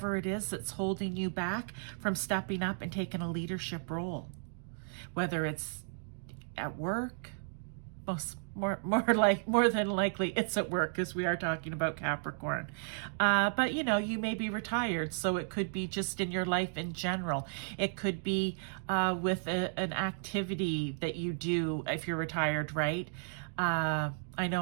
it is that's holding you back from stepping up and taking a leadership role. Whether it's at work, more than likely it's at work, because we are talking about Capricorn. But you know, you may be retired, so it could be just in your life in general. It could be with an activity that you do if you're retired, right? I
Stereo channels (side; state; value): left; silent; digital silence